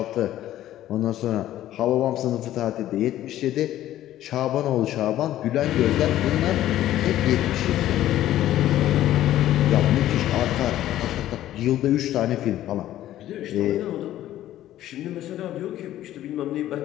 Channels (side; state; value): right; quieter; 13.3 dB